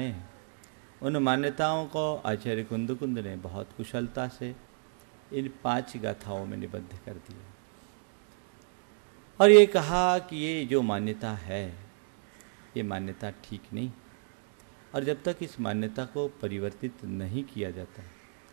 हैं, उन मान्यताओं को आचार्य कुंद ने बहुत कुशलता से इन 5 गाथाओं में निबद्ध कर दिया और ये कहा कि ये जो मान्यता है ये मान्यता ठीक नहीं, और जब तक इस मान्यता को परिवर्तित नहीं किया जाता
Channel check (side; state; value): left; silent; 57 dB below the other